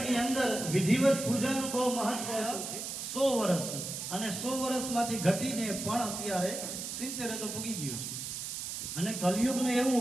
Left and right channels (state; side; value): noise; right; hiss, 6 dB below the sound